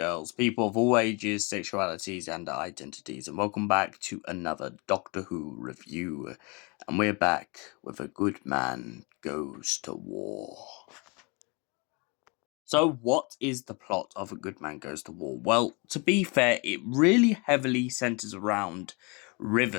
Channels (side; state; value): right; quieter; 30.2 dB